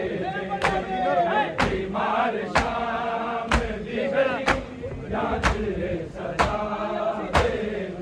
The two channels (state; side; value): identical; both; correlation 1.00